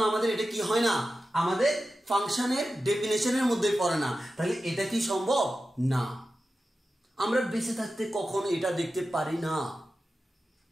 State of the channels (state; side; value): normal; both; correlation 0.92